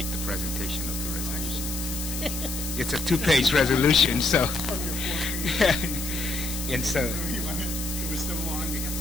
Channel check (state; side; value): noise; left; hiss, 6 dB below the sound